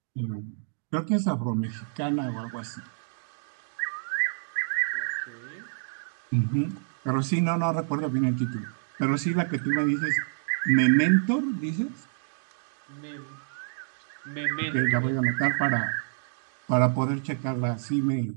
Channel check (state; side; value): silent; left; digital silence